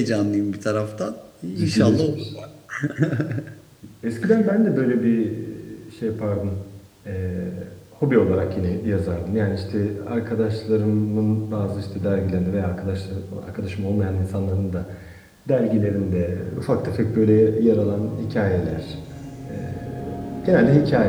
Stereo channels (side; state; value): both; identical; correlation 1.00